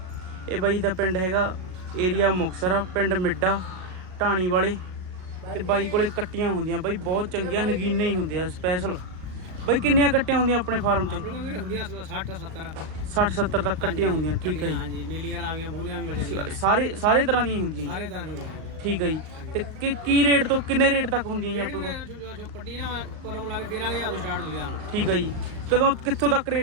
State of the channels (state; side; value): late; left; 38 ms